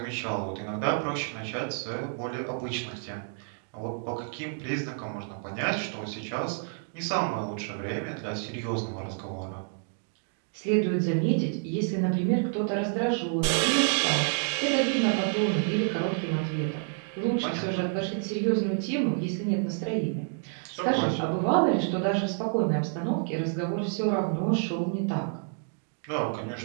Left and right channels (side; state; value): left; silent; 59 dB below the other